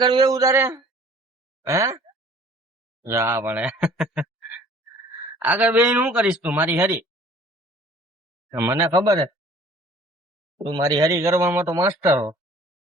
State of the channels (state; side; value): normal; both; correlation 0.51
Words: બેવું તારે હે? જા પણ આગળ બેહીને શું કરીશ તું મારી હરી? મને ખબર હે તું મારી હરી કરવામાં તો માસ્ટર હો.